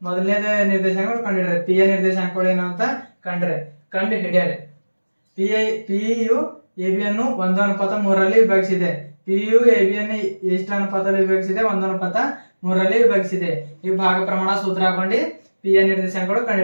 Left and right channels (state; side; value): inverted; both; correlation -1.00